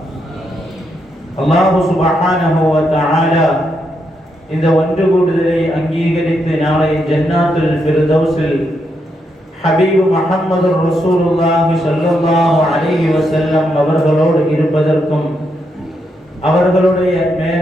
அல்லாஹு சுப்ஹானஹு வ தஆலா இந்த ஒன்று கூடுதலை அங்கீகரித்து நாளை ஜன்னாத்துல் ஃபிர்தௌஸில் ஹபீபு முஹம்மது ரசூலுல்லாஹி ஸல்லல்லாஹு அலைஹி வஸல்லம் அவர்களோடு இருப்பதற்கும் அவர்களுடைய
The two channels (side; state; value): both; normal; correlation 0.80